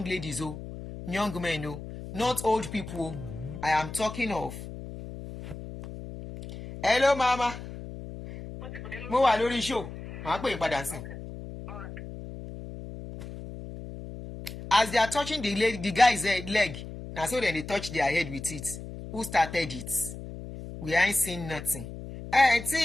ladies, oh, young men, oh, not old people. I am talking of. Hello, mama. Mo wà lórí show. Màá pè é padà sí. As they are touching the guy's leg, now so then they touch their head with it. Who started it? We ain't seen nothing.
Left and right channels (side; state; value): left; noise; hum, 11 dB below the sound